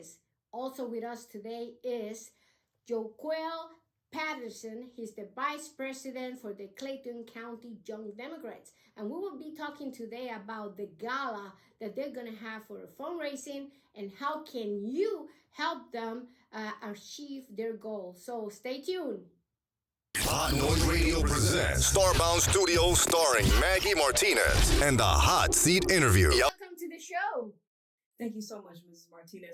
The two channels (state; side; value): identical; both; correlation 1.00